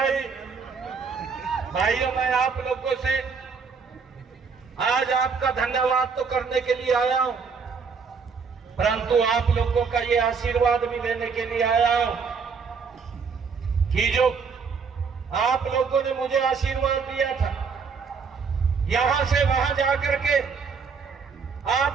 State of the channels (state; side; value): quieter; left; 5.5 dB